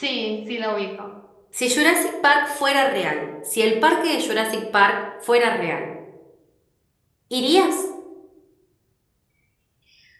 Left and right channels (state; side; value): identical; both; correlation 1.00